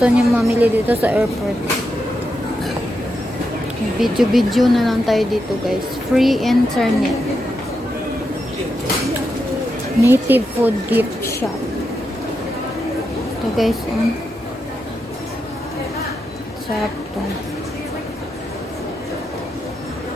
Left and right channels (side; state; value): both; normal; correlation 0.85